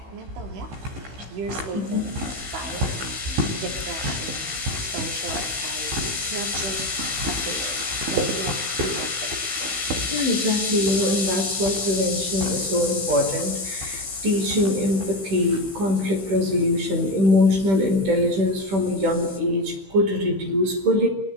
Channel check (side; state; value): left; late; 15 ms